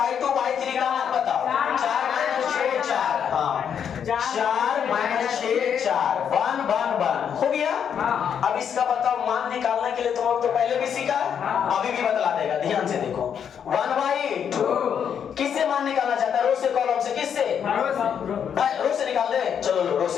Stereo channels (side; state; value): right; quieter; 8.0 dB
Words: y3 का मान बताओ 4 - 6 4। हाँ 4 - 6 4 1 1 1 हो गया। अब इसका बताओ मान निकालने के लिए तुम लोग तो पहले भी सीखा, अभी भी बतला देगा, ध्यान से देखो। 1/2 किससे मान निकालना चाहता है, रो से कॉलम से, किससे, रो से निकाल दे। चलो लो रो से